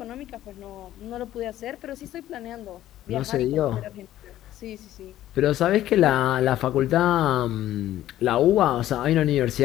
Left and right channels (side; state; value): right; quieter; 13.4 dB